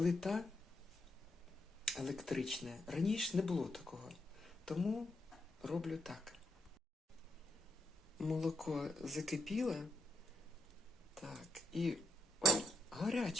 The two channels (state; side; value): normal; both; correlation 0.77